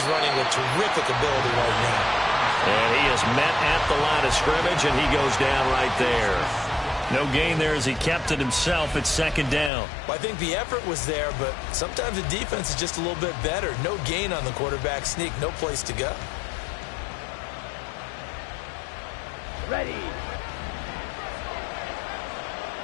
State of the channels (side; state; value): right; drops out; at 9.7 s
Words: running with terrific ability right now. And he is met at the line of scrimmage, and he goes down right there. No gain there as he kept it himself at second down. Well, I think the effort was there, but sometimes the defense is just a little bit better. No gain on the quarterback sneak, no place to go. Ready.